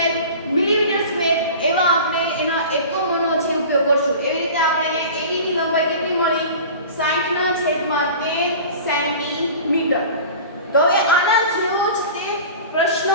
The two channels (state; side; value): inverted; both; correlation -0.38